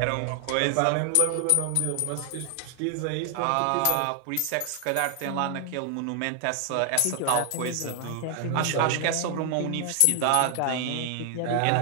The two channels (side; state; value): both; different; correlation 0.00